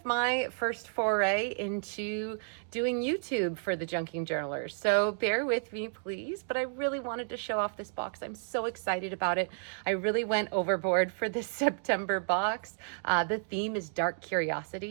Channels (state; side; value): silent; left; digital silence